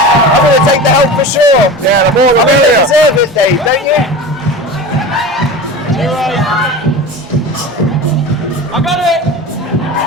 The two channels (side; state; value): both; normal; correlation 0.32